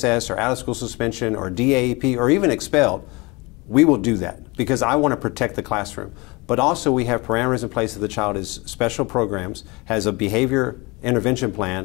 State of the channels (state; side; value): quieter; right; 25.6 dB